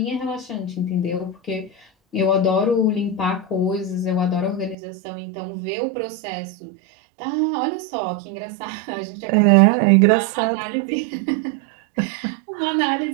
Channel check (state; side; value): drops out; left; at 4.8 s